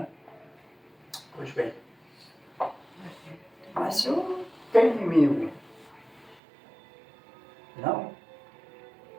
Pois bem. Mas eu não tenho inimigo. Não?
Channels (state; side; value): drops out; left; at 6.4 s